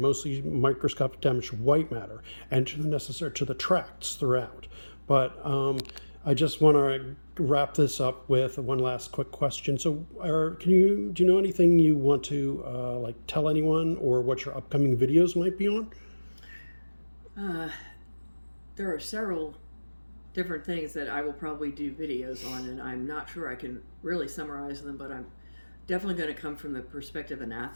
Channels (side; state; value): both; inverted; correlation -1.00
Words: mostly microscopic damage to white matter and to the tracts throughout. But I just want to wrap this up with one last quick question. So, do you know anything you want to tell anyone, or what your upcoming videos might be on? There are several different things that I will probably do videos on, and I'm not sure I can really summarize them, but I'm definitely going to come from the perspective of an